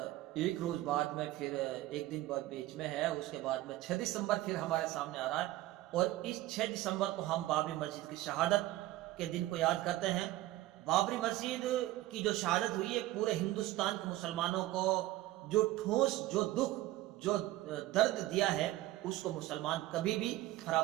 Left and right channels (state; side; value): quieter; left; 16.3 dB